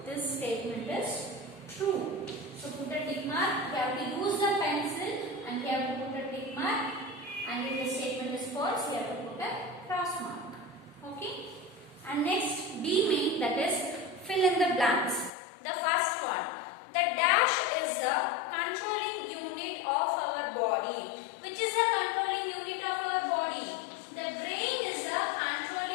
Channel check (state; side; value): drops out; right; at 15.3 s